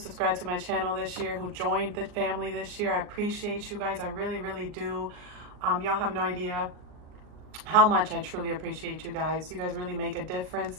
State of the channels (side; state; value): left; late; 39 ms